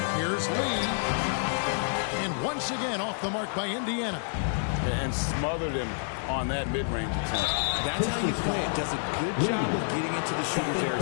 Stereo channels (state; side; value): silent; right; digital silence